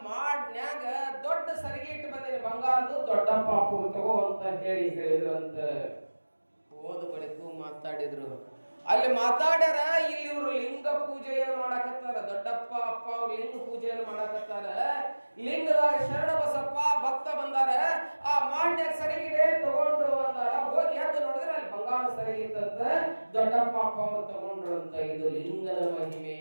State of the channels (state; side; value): inverted; both; correlation -1.00